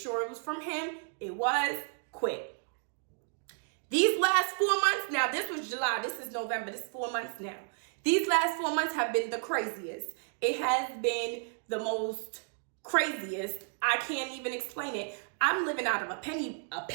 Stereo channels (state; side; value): silent; left; 56 dB below the other